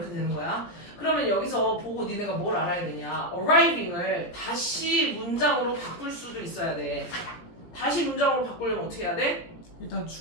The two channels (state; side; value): late; right; 17 ms